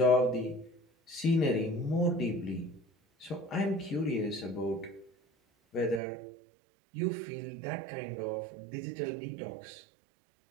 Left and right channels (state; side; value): drops out; left; at 6.0 s